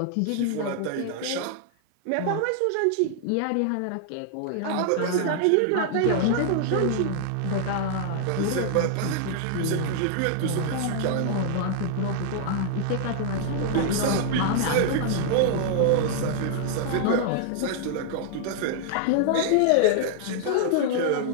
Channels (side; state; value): both; different; correlation -0.01